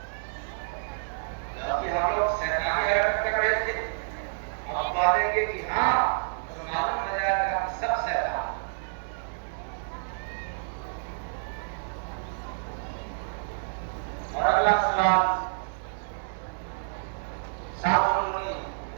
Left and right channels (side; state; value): left; silent; digital silence